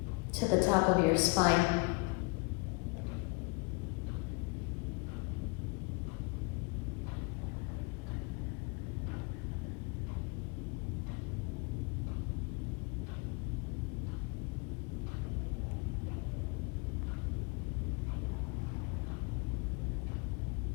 to the top of your spine.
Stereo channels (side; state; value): right; quieter; 29.4 dB